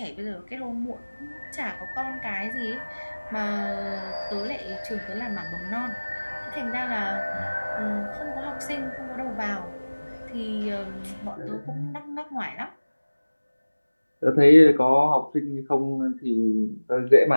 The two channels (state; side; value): inverted; both; correlation -1.00